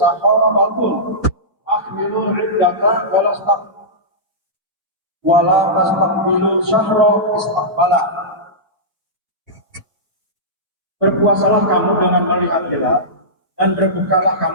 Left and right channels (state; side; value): normal; both; correlation -0.15